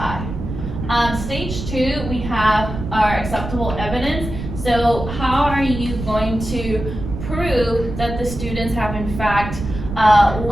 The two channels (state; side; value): noise; right; rumble, 7 dB below the sound